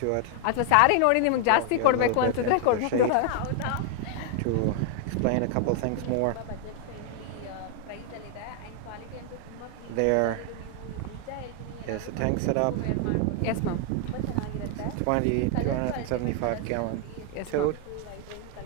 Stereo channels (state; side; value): different; both; correlation 0.00